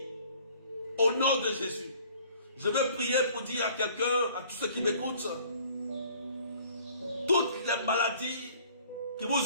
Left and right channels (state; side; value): inverted; both; correlation -0.55